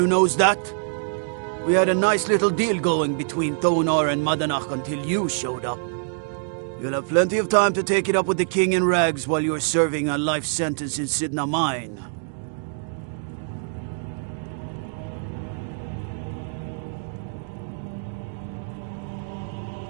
knows that? We had a nice little deal going between Thonar and Madanach until you showed up. You'll have plenty of time to take it up with the king in rags while you're serving a life sentence in Sidna Mine.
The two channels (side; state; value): left; silent; digital silence